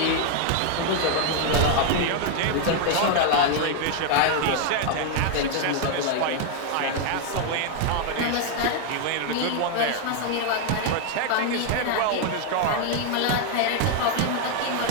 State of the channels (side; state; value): both; different; correlation 0.00